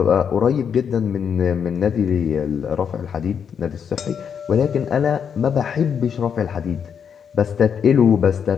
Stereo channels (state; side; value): quieter; right; 7.4 dB